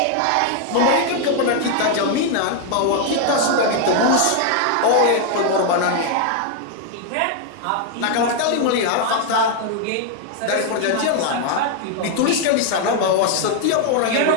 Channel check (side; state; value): both; different; correlation 0.00